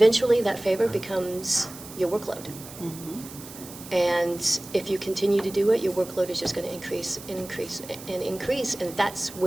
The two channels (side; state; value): right; noise; hiss, 15 dB below the sound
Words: that favor becomes your workload. And if you continue to do it, your workload is just going to increase and increase and increase, and that's